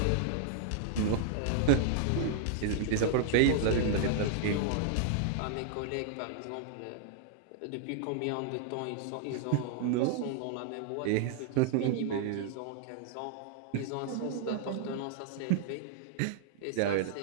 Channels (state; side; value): different; both; correlation 0.00